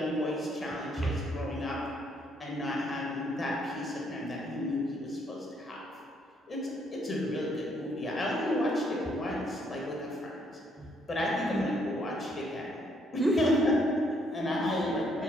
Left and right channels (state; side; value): normal; both; correlation 0.70